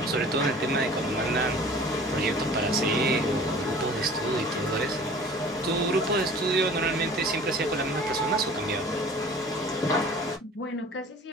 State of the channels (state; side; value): normal; both; correlation 0.45